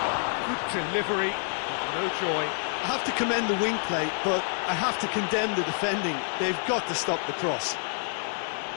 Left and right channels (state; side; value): silent; right; 59 dB below the other